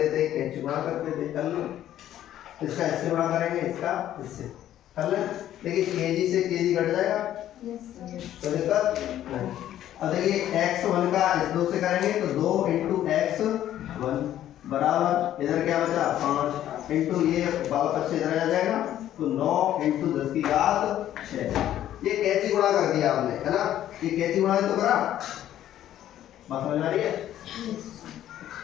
थे, कैंची गुणा करते थे, कर लो, इसका इससे गुणा करेंगे, इसका इससे कर ले, देखिए केजी से केजी घट जाएगा, तो दिक्कत नहीं। अब देखिए x1 का इस 2 से करेंगे तो 2 × x1 बराबर, इधर क्या बचा 5 इंटू ये वाला पक्ष इधर आ जाएगा तो 9 × 10⁶। ये कैंची गुणा कर दिया आपने, है ना, ये कैंची गुणा तो करा, बात समझ आ रही है।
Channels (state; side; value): quieter; right; 12.0 dB